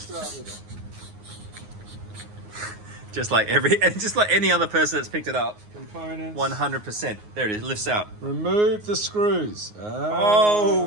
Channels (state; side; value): late; left; 9.5 ms